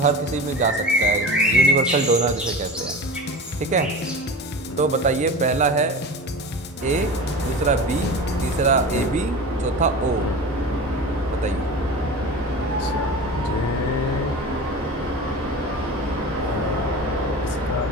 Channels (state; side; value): normal; both; correlation 0.32